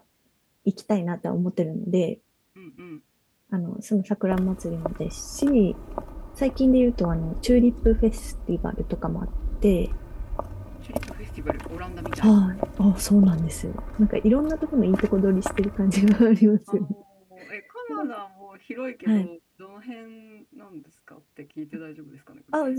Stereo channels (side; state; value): both; identical; correlation 1.00